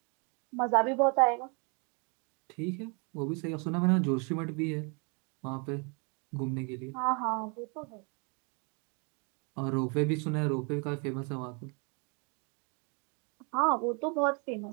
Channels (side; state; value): left; quieter; 34.7 dB